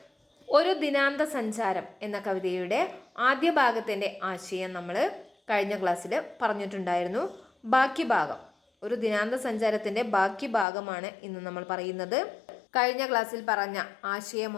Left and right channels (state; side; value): drops out; right; at 10.7 s